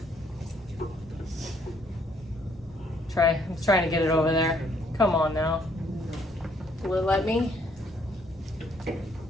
I'm trying to get it over there. Come on now. Will it let me?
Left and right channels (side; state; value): both; normal; correlation 0.67